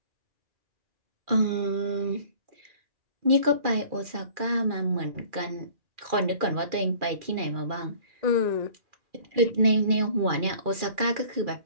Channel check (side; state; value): left; late; 2.4 ms